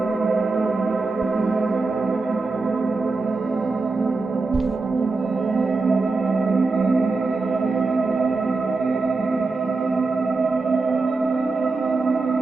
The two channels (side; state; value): left; quieter; 3.8 dB